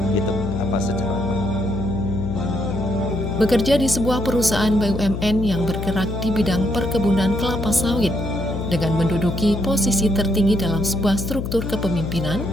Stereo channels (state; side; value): noise; left; hum, 4 dB below the sound